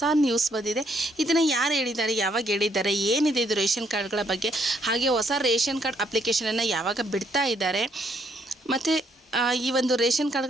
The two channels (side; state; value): both; normal; correlation 0.70